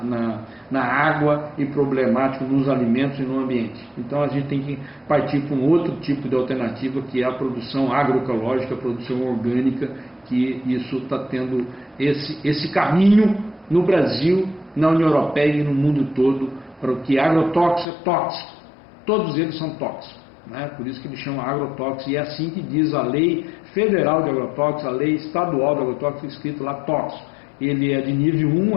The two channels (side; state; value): right; drops out; at 17.9 s